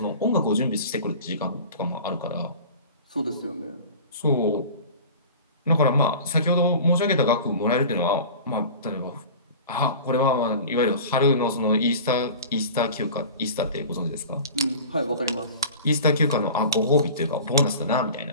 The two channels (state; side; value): inverted; both; correlation -0.38